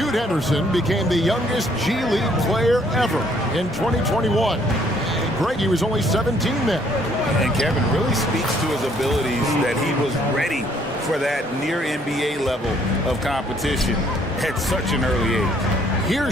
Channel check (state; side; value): normal; both; correlation 0.65